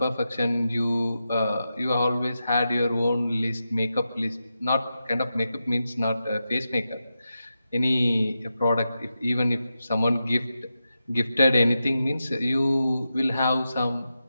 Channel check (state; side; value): inverted; both; correlation -0.89